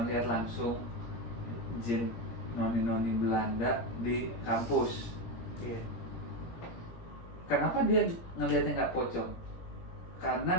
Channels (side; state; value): right; late; 17 ms